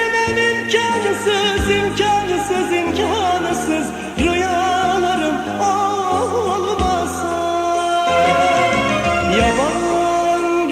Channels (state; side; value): identical; both; correlation 1.00